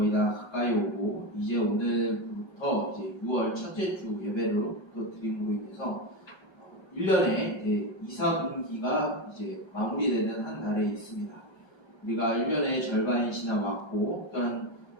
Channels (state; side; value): late; right; 1.3 ms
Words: 다 가까이 오고 이제 오늘부터 이제 6월 첫째 주 예배를 또 드림으로 인해서 1년의 이제 2, 4분기가 이제 마무리되는 한 달에 있습니다. 우리가 1년의 절반이 지나왔고 또한